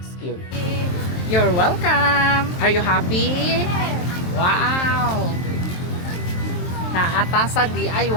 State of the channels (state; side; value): late; right; 23 ms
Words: Cube. You're welcome. Are you happy? Wow. Naata sa